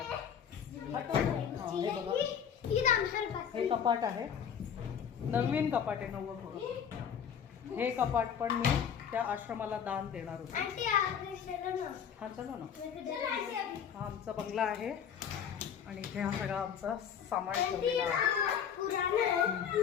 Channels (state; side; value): quieter; right; 8.0 dB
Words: हे बघा हे कपाट आहे, नवीन कपाट आहे 90. हे कपाट पण मी त्या आश्रमाला दान देणार होते. हा चला ना. हा आमचा बंगला आहे आणि इथे हा सगळा आमचा सामान ठेवलेला आहे.